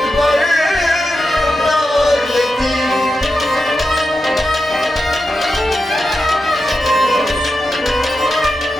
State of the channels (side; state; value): both; normal; correlation 0.89